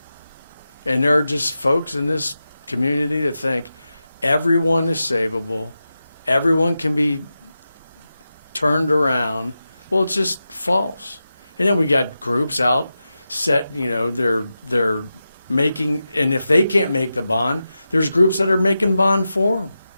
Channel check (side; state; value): both; inverted; correlation -0.91